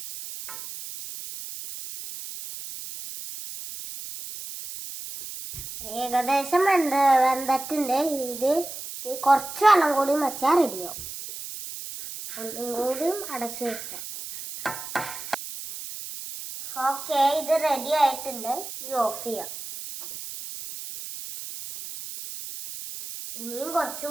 ഏകദേശം വെന്തിട്ടുണ്ട്. ഇത് കുറച്ച് വെള്ളം കൂടി വെച്ചാൽ റെഡിയാവും. ഒന്നും കൂടി അടച്ചു വെക്കാം. ഓക്കെ, ഇത് റെഡി ആയിട്ടുണ്ട്. ഇത് ഓഫ് ചെയ്യാം. ഇനിയും കുറച്ച്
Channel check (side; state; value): right; noise; hiss, 10 dB below the sound